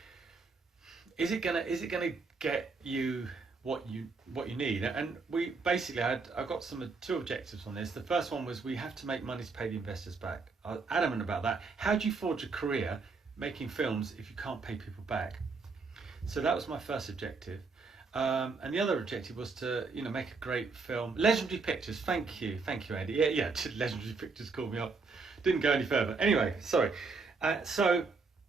is it gonna get you what you need? And we basically I've got two objectives on this. The first one was we have to make money to pay the investors back. I was adamant about that. How do you forge a career making films if you can't pay people back? So that was my first objective. And the other objective was to, you know, make a great film. Legendary Pictures, thank you, Andy. Yeah, Legendary Pictures called me up. Didn't go any further. Anyway, sorry. So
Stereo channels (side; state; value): left; quieter; 4.3 dB